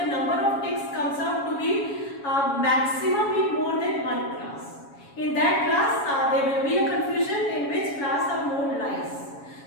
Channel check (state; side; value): late; right; 7.2 ms